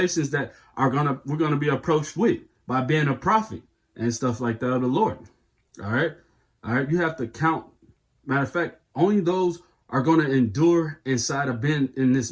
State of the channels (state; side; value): identical; both; correlation 1.00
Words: that we're gonna be approached with by being a prophet and stuff like that of the Lord. All right, you have to count. Matter of fact, only those are going to endure inside of being in this